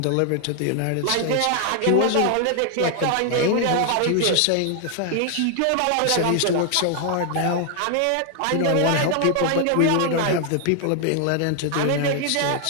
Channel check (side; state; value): both; different; correlation 0.00